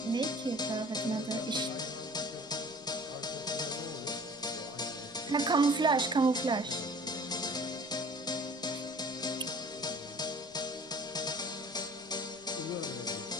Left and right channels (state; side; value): noise; left; rumble, 29 dB below the sound